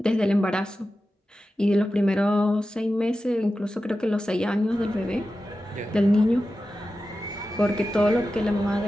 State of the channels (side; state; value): both; normal; correlation 0.93